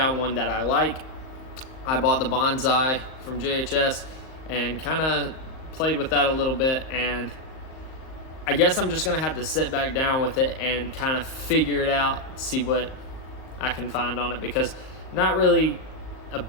one that I like. I bought the Bonsai from JHS and kind of played with that a little bit, and I guess I'm just gonna have to sit back down with it and kind of figure it out, see what I can find on it, because not really a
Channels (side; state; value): right; late; 38 ms